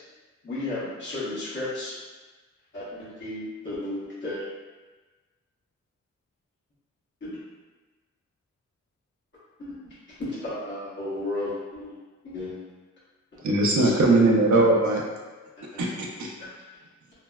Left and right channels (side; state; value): both; normal; correlation 0.34